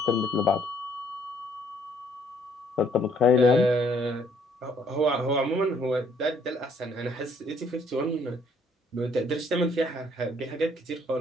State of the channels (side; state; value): both; normal; correlation 0.64